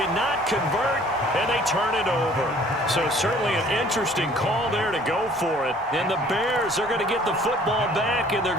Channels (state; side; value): normal; both; correlation 0.55